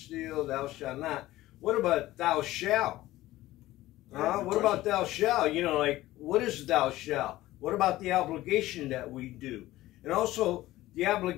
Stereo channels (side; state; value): right; quieter; 16.4 dB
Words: thou shalt not. What about thou shalt? What about thou shalt? You know, like, what is thou shalt? What about the obligation that we do? And also, the